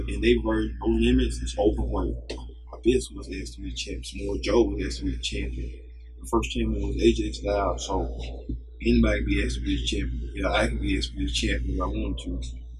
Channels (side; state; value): both; identical; correlation 1.00